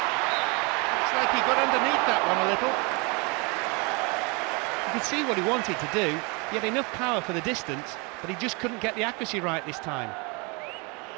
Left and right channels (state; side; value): quieter; left; 30.2 dB